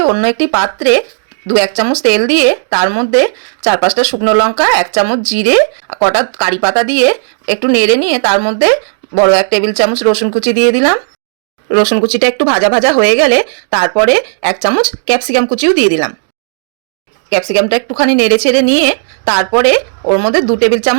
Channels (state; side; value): silent; left; digital silence